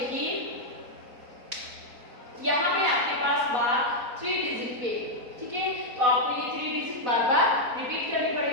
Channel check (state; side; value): late; left; 4.1 ms